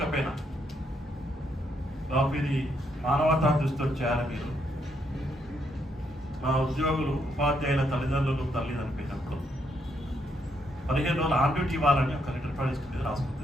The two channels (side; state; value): both; normal; correlation 0.76